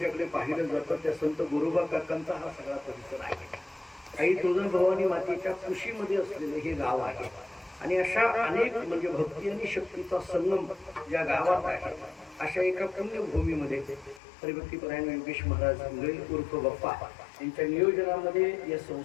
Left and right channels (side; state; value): right; drops out; at 14.2 s